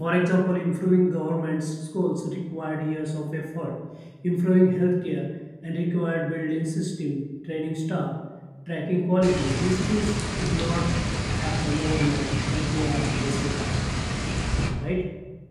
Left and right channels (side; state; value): both; identical; correlation 1.00